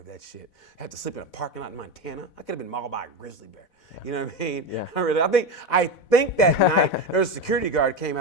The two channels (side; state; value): right; late; 4.1 ms